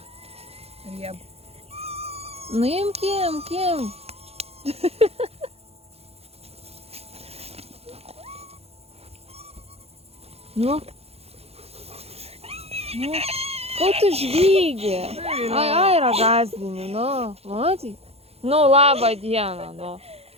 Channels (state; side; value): late; left; 0.29 ms